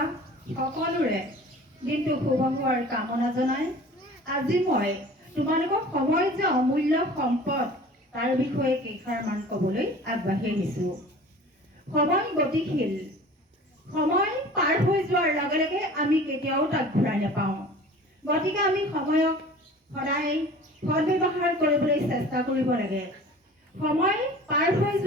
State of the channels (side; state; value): both; normal; correlation 0.43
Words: সকলোৰে দিনটো শুভ হোৱাৰ কামনা জনাই আজি মই তোমালোকক সময় যে অমূল্য সম্পদ তাৰ বিষয়ে কেইষাৰমান ক'বলৈ আগবাঢ়ি আহিছোঁ। সময় গতিশীল, সময় পাৰ হৈ যোৱাৰ লগে লগে আমি কেতিয়াও তাক ঘূৰাই নাপাওঁ। গতিকে আমি সময়ক সদায় সদ্ব্যৱহাৰ কৰিবলৈ চেষ্টা কৰিব লাগে। সময় পাৰ হৈ